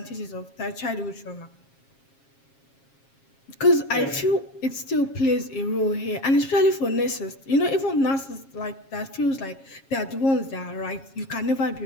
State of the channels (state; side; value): late; right; 7.4 ms